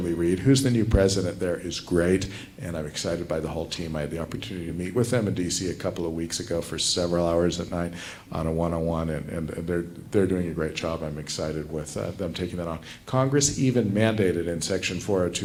Reed, who's the new president there, is great, and I'm excited by the whole team. I had the opportunity to meet with them in DC a couple of weeks ago for several hours at night on a one-on-one, and they're doing a great job. I'm excited with them taking that on. Congress even mandated in Section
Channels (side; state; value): both; identical; correlation 1.00